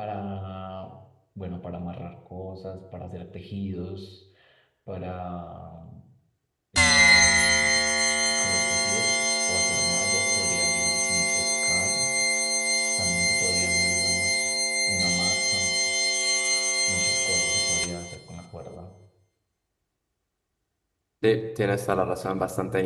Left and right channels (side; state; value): both; identical; correlation 1.00